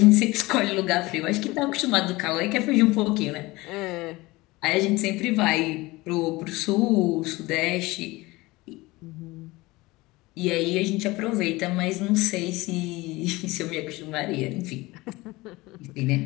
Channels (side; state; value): right; quieter; 21.1 dB